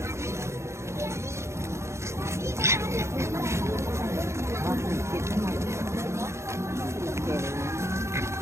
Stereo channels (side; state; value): left; late; 0.13 ms